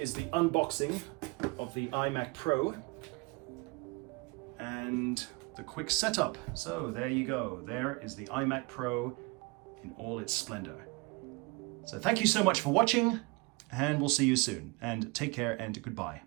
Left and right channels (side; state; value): left; quieter; 27.2 dB